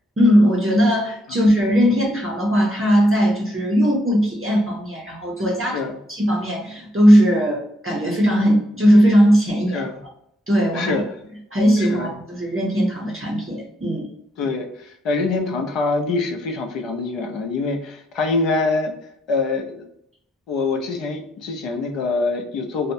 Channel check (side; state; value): both; normal; correlation 0.78